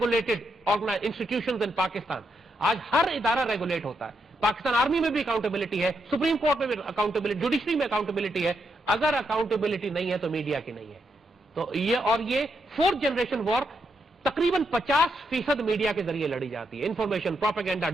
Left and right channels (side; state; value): both; normal; correlation 0.81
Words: institutions in Pakistan, آج ہر ادارہ ریگولیٹ ہوتا ہے. پاکستان آرمی میں بھی اکاؤنٹیبلٹی ہے, سپریم کورٹ میں بھی اکاؤنٹیبلٹی, جوڈیشری میں اکاؤنٹیبلٹی ہے. اگر اکاؤنٹیبلٹی نہیں ہے تو میڈیا کی نہیں ہے. تو یہ فورتھ جنریشن وار تقریباً 50% میڈیا کے ذریعے لڑی جاتی ہے. انفارمیشن, پروپیگنڈا,